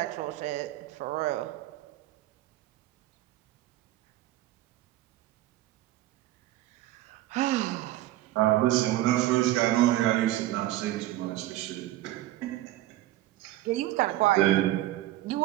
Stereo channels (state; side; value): quieter; left; 15.4 dB